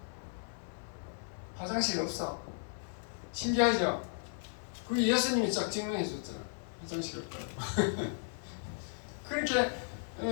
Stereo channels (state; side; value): silent; right; digital silence